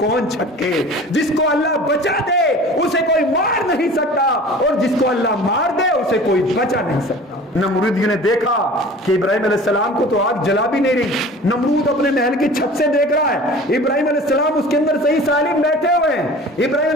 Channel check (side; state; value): both; normal; correlation 0.42